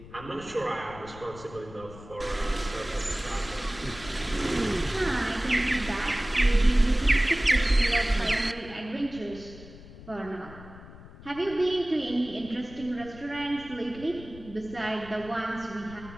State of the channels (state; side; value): noise; left; rumble, 17 dB below the sound